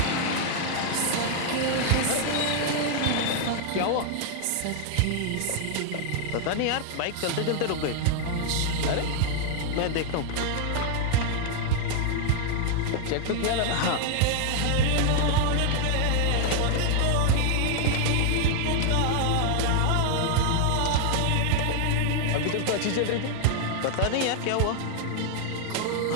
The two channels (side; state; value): both; different; correlation 0.00